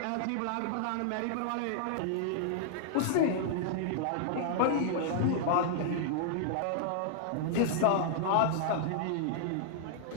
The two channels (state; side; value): different; both; correlation -0.01